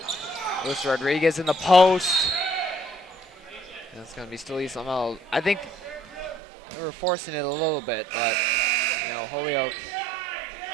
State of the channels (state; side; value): drops out; left; at 6.4 s